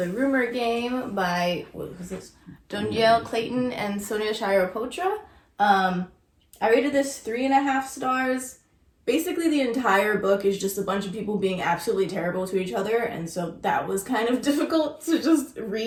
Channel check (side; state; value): both; identical; correlation 1.00